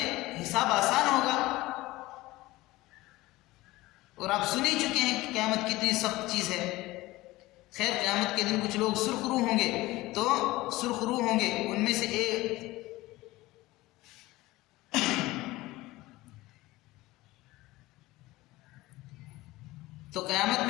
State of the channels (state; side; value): quieter; right; 19.0 dB